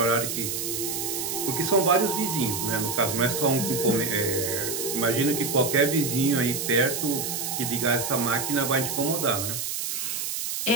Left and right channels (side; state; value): right; noise; hiss, 3 dB below the sound